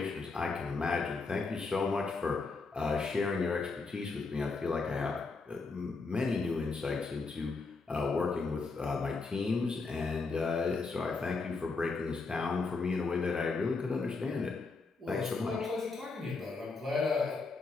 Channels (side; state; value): right; quieter; 4.1 dB